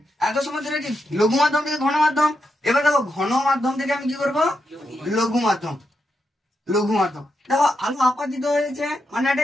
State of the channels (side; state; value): both; normal; correlation 0.84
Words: এত সময় ধরে কি লঘু মাধ্যম থেকে ঘন মাধ্যম, এবার দেখো ঘন মাধ্যম থেকে আমি কি করবো, লঘু মাধ্যম, লঘু মাধ্যম। দেখো আলো আপাতিত হয়েছে মানে